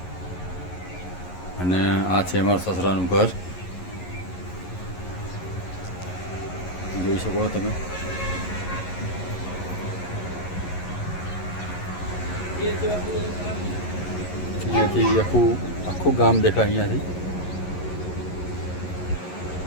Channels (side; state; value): right; late; 11 ms